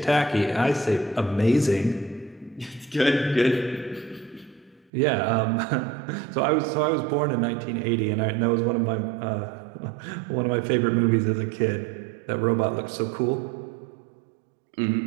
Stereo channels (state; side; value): drops out; left; at 4.9 s